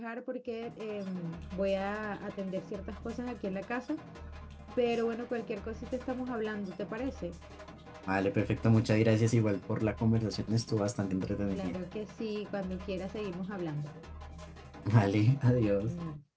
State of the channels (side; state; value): both; identical; correlation 1.00